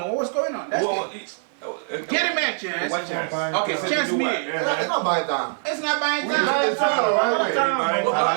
what was going on. That's get him a chance. What chance? Okay, chance me. It's not buying time. It's not buying time. Wait.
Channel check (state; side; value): silent; left; 55 dB below the other